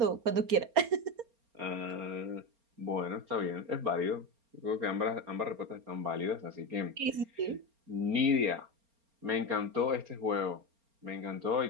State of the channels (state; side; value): late; left; 4.3 ms